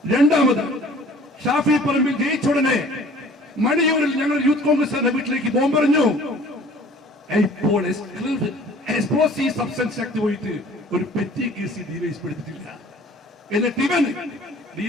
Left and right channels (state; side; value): normal; both; correlation 0.50